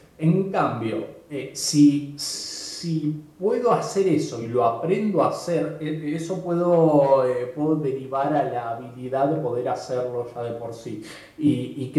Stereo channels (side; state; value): both; identical; correlation 1.00